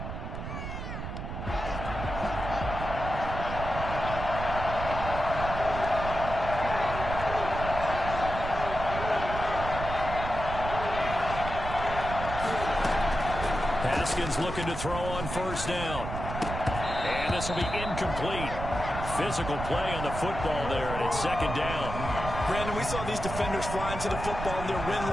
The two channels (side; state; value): right; noise; rumble, 6 dB below the sound